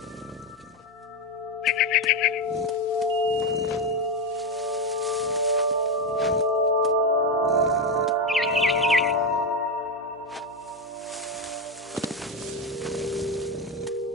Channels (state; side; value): normal; both; correlation 0.11